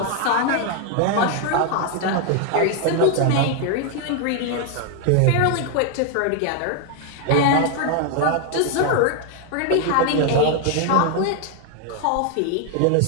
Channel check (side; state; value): both; different; correlation 0.01